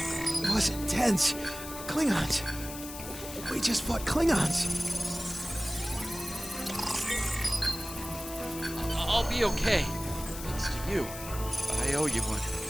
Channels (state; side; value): noise; left; hiss, 11 dB below the sound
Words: was intense. Klingons. We just fought Klingons. I'll be okay. Thanks to you. I owe you one.